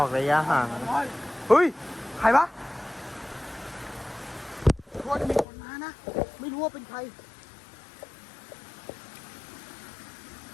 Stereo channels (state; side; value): drops out; right; at 5.5 s